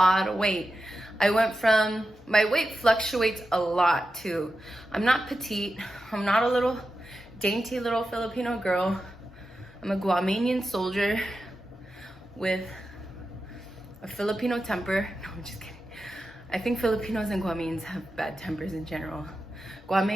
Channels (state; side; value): normal; both; correlation 0.91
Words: of weight. My weight fluctuates a lot too. I'm not petite. I'm not a little dainty little Filipino girl. I'm a Guamanian soldier with a Filipino temper. No, I'm just kidding. I think Filipinos and Guamanians have bad tempers in general.